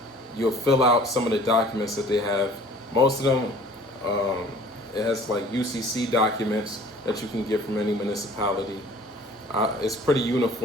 you'll fill out some of the documents that they have. Most of them, it has like UCC documents that you can get from any municipality. It's pretty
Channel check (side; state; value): both; normal; correlation 0.50